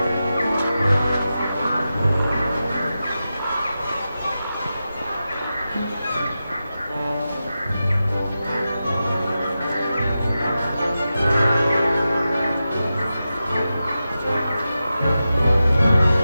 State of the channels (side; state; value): both; inverted; correlation -0.91